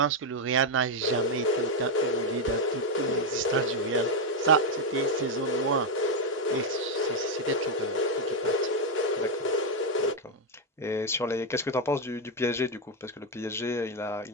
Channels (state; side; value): normal; both; correlation 0.04